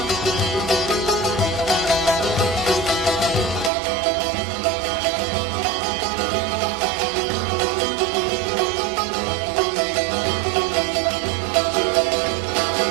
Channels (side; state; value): left; drops out; at 3.7 s